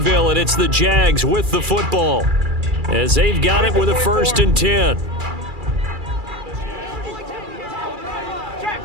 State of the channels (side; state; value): left; late; 2.3 ms